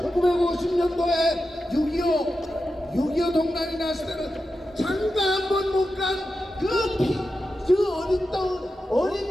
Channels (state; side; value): normal; both; correlation 0.90